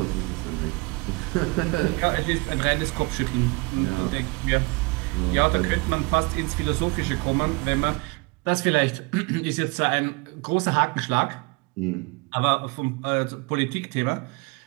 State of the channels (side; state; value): left; quieter; 27.8 dB